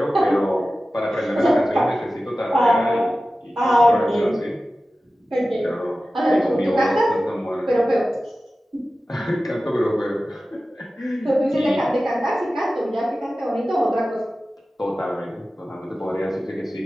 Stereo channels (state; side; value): normal; both; correlation 0.95